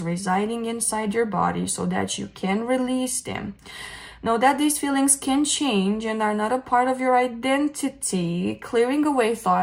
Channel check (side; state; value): both; identical; correlation 1.00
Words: residing inside your body so that you can release them. Know that these feelings can change and are not a part of your identity, clearing away